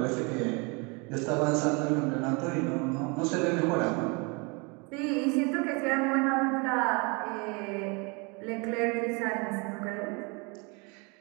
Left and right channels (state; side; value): quieter; left; 30.4 dB